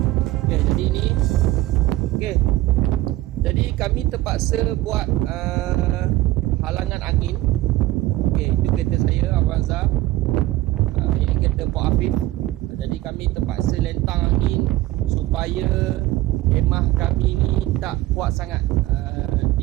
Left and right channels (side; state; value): left; quieter; 16.7 dB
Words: Okay, jadi ini okay. Jadi kami terpaksa buat halangan angin. Okay, itu kereta saya, Avanza. Ini kereta Pak Afif. Jadi kami terpaksa lentang angin supaya khemah kami ni tak kuat sangat